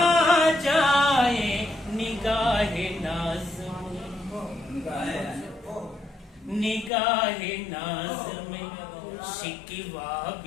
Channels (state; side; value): drops out; right; at 6.9 s